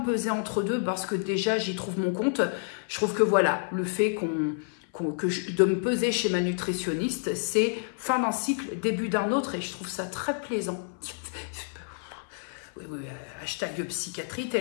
peser entre deux parce que déjà, j'y trouve mon compte. Je trouve que voilà, le fait de me peser chez ma nutritionniste, c'est fin d'un cycle, début d'un autre et je trouve ça très plaisant. Oui, hashtag psychiatrie,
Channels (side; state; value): right; silent; 59 dB below the other